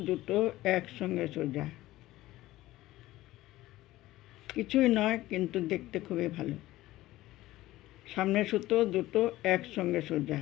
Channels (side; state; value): right; quieter; 16.6 dB